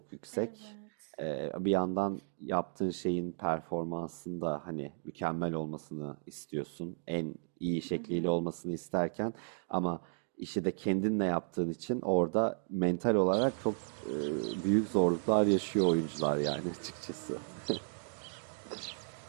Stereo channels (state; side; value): silent; left; digital silence